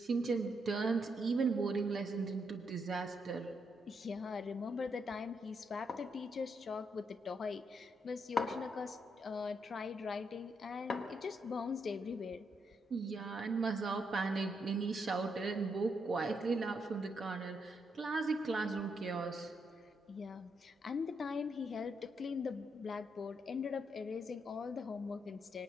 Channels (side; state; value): both; normal; correlation 0.79